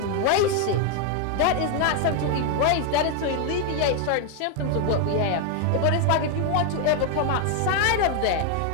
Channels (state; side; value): different; both; correlation 0.01